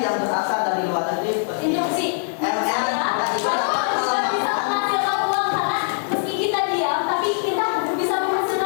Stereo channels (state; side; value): silent; right; digital silence